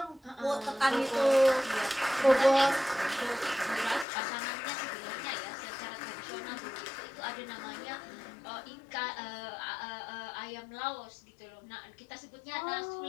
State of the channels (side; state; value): right; drops out; at 4.0 s